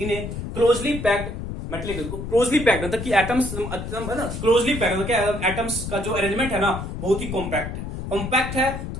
a closely packed metallic, closely packed मतलब कि atoms है ना, closely packed मतलब क्या, atoms का जो arrangement है ना बहुत ही कॉम्पैक्ट है। कॉम्पैक्ट है तो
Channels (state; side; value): noise; left; rumble, 6 dB below the sound